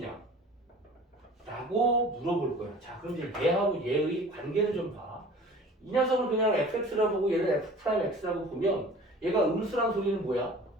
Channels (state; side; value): normal; both; correlation 0.44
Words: 라고 물어볼 거야. 자, 그럼 이제 얘하고 얘의 관계를 좀 봐. 이 녀석을 그냥 fx라고 보고 얘를 f 프라임 x라고 보면 얘가 음수란 소리는 뭐야?